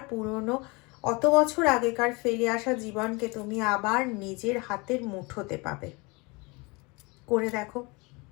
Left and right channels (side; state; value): right; quieter; 26.8 dB